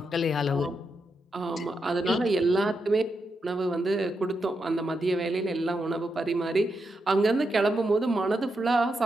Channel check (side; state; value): both; normal; correlation 0.84